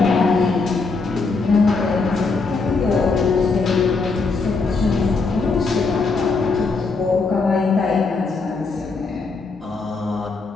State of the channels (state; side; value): quieter; right; 4.2 dB